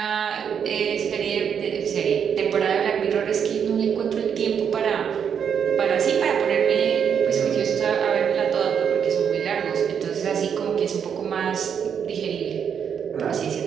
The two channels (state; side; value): quieter; left; 7.6 dB